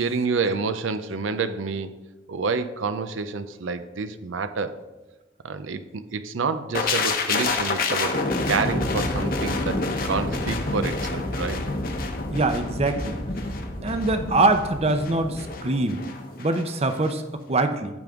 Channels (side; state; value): both; normal; correlation 0.23